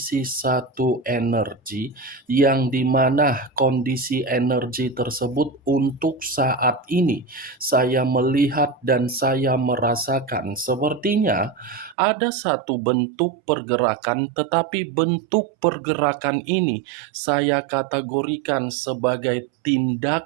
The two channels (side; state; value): left; drops out; at 12.0 s